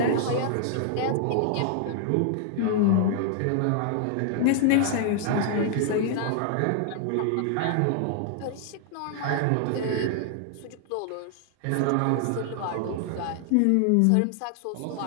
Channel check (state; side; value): different; both; correlation -0.01